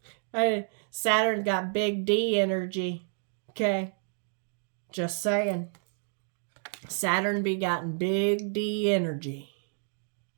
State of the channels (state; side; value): silent; left; 58 dB below the other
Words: Saturn got big D energy. Okay. Just saying. Saturn be gotten big D energy.